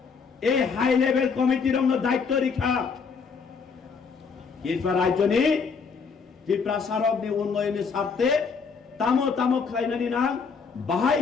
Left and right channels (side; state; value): right; quieter; 5.4 dB